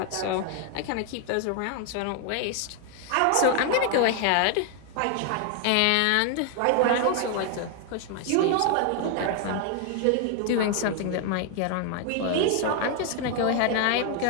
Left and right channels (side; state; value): both; different; correlation 0.00